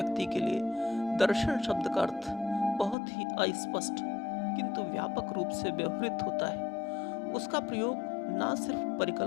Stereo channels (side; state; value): right; drops out; at 3.0 s